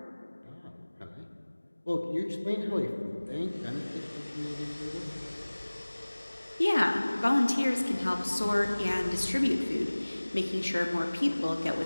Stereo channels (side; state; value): both; inverted; correlation -1.00